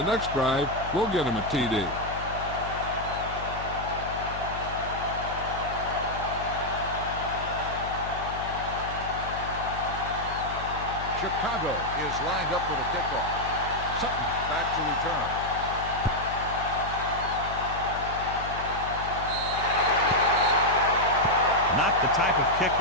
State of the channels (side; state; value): left; noise; hum, 10 dB below the sound